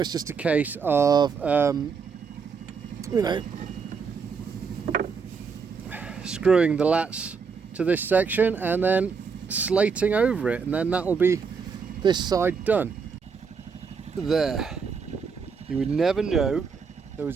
just a case of, you know, screwing the lats to this section and then slating over it, and then that will be this side done. There. You would never know there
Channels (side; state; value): left; quieter; 5.6 dB